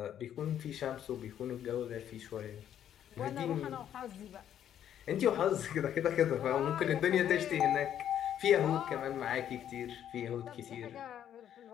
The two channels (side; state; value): right; quieter; 10.2 dB